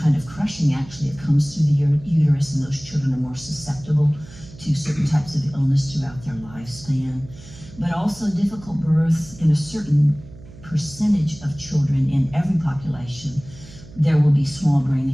of crushing actually that comes through the uterus, and those children are more susceptible to certain types of illness throughout their lifespan. But also difficult birth in a certain percentage of children in every population, there will be small brain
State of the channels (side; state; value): right; noise; hum, 19 dB below the sound